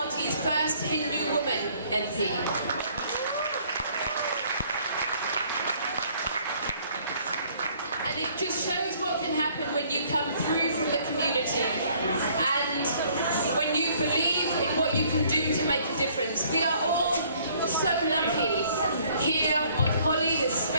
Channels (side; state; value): both; inverted; correlation -0.61